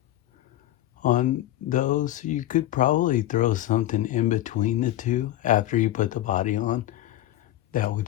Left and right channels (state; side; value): quieter; right; 14.1 dB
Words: on those, so you could probably throw something in between the two after you put the body on. That